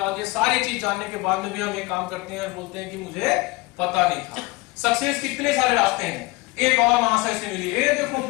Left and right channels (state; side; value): quieter; right; 23.0 dB